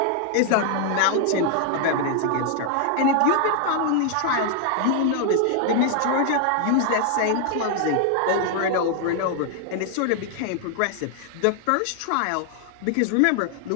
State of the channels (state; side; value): different; both; correlation 0.00